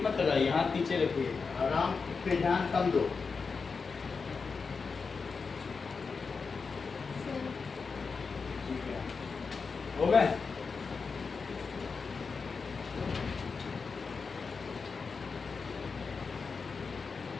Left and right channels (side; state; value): right; quieter; 4.9 dB